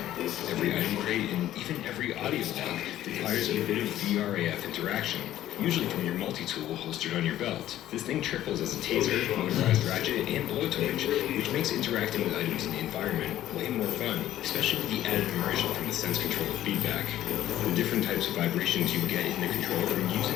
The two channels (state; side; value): quieter; right; 13.1 dB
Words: Every item crate and even every audio log requires a bit of VRAF interaction, usually from your multi-tool holstered on your belt. This thing triples as a taser, motorized ratchet, and blowtorch, which makes interacting with items in the environment way more fun, especially with the added immersion from the sense control feedback. The different types of vibrations you get in the controller from